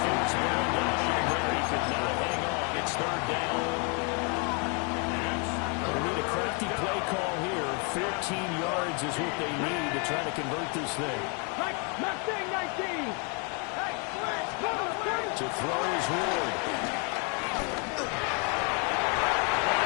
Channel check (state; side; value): quieter; right; 35.8 dB